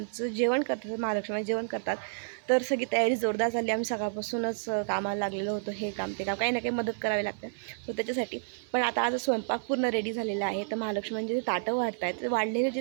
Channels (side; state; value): left; silent; 58 dB below the other